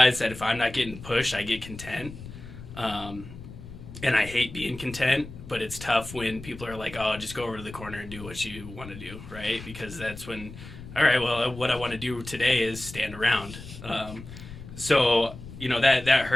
that if I'm not getting pushed, I get content. And I hate being content, but it's tough when people are like, oh, just go over to the corner and do what you want to do, right? Because that's when, all right, well, what I want to do today is stand around. So that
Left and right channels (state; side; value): noise; left; rumble, 14 dB below the sound